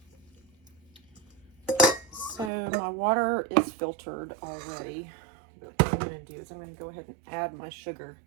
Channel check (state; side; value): drops out; left; at 2.5 s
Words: So my water is filtered already, but what I'm going to do is I'm going to go ahead and add my sugar.